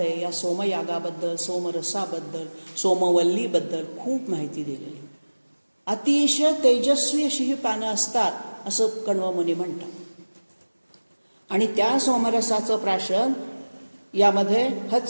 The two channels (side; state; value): both; inverted; correlation -1.00